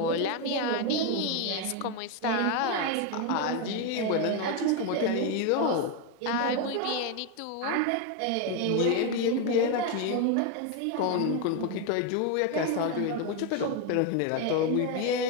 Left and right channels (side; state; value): both; different; correlation 0.01